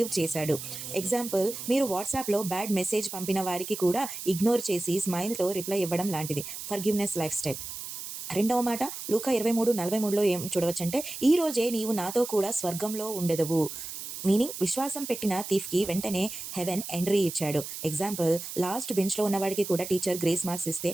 చేశాడు. ఎగ్జాంపుల్, మీరు వాట్సాప్లో బ్యాడ్ మెసేజ్ పంపిన వారికి కూడా ఇగ్నోర్ చేసి స్మైల్తో రిప్లై ఇవ్వడం లాంటిది ఫర్గివ్నెస్ లైఫ్ స్టైల్. రెండవ మాట లూకా 23:43లో ఏం చూడవచ్చంటే, ఈ రోజే నీవు నాతో కూడా స్వర్గంలో ఉండెదవు. మీనింగ్, విశ్వాసం పెట్టిన థీఫ్కి వెంటనే హెవెన్ ఎంట్రీ ఇచ్చాడు. ఎగ్జాంపుల్, లాస్ట్ బెంచ్లో ఉన్నవాడికి కూడా టీచర్ గ్రేస్ మార్క్స్ ఇస్తే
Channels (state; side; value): noise; right; hiss, 9 dB below the sound